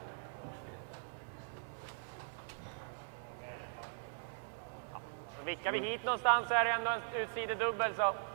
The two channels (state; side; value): silent; left; digital silence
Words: Så vickar vi hit någonstans så är det ändå en utsidedubbel. Så,